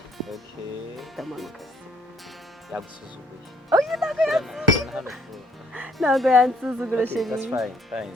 Okay. Ndamanuka. Yagusuzuguye. Oh, you ntabwo Urabona hano ku- ntabwo yansuzugura Okay, that's sheri. fine.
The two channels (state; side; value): normal; both; correlation 0.65